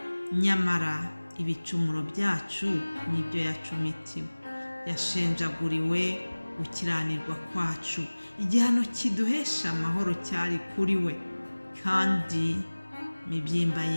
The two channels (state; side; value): inverted; both; correlation -1.00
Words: Nyamara ibicumuro byacu nibyo yacumitiwe, yashenjaguriwe gukiranirwa kwacu, igihano kiduhesha amahoro cyari kuri we, kandi imibyimba